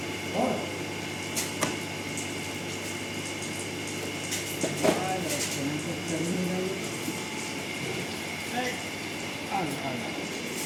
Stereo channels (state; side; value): identical; both; correlation 1.00